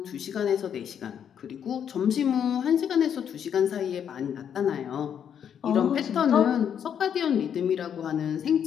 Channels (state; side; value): quieter; right; 8.5 dB